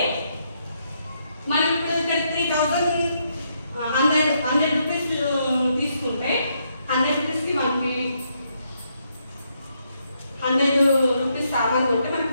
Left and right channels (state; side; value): inverted; both; correlation -0.77